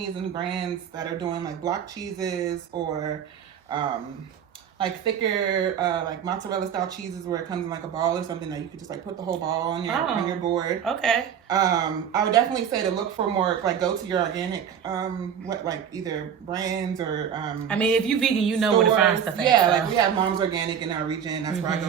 and brands that are doing like block cheeses or like thicker like mozzarella style cheeses where it comes in like a ball or something that you could just like put the whole ball on your board. Okay. I would definitely say to look for more, like go to your organic like either brands or I mean, if you vegan, you know where to find stuff at. Yeah, like we have Mom's Organic in our region. That's where I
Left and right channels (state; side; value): quieter; left; 8.3 dB